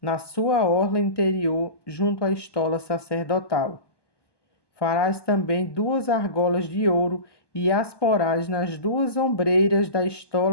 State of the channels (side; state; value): right; late; 1.2 ms